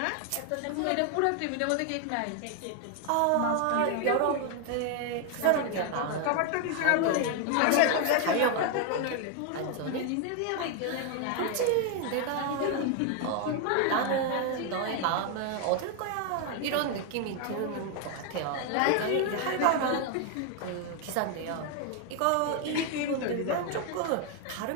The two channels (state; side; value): different; both; correlation 0.00